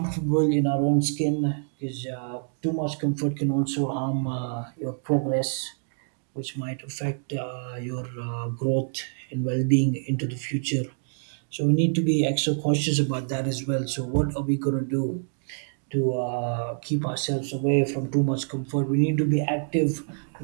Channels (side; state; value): left; silent; digital silence